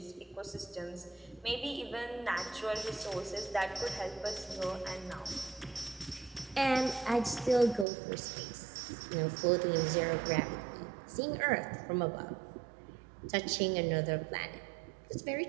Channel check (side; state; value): left; drops out; at 7.9 s